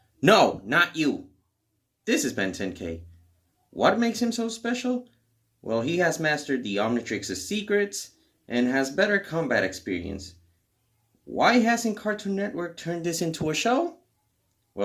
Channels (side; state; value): both; identical; correlation 1.00